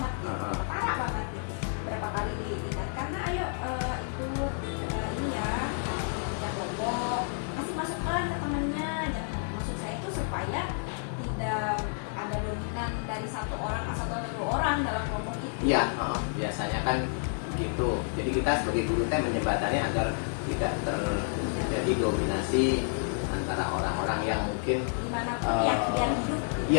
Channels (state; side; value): silent; right; 58 dB below the other